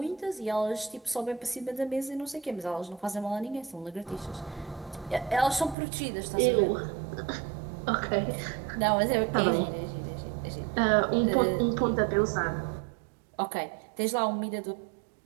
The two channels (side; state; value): left; drops out; at 5.8 s